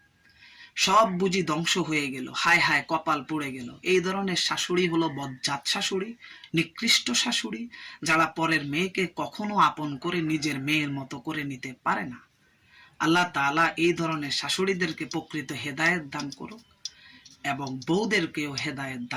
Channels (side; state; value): both; identical; correlation 1.00